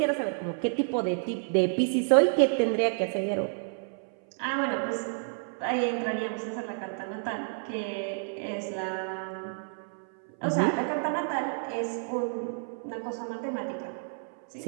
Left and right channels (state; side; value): silent; left; 58 dB below the other